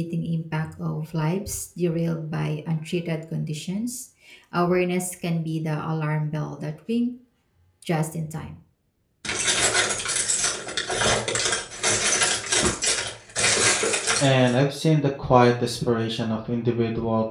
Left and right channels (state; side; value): identical; both; correlation 1.00